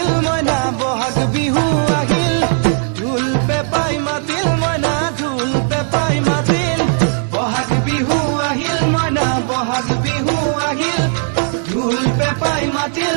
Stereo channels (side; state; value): left; silent; 57 dB below the other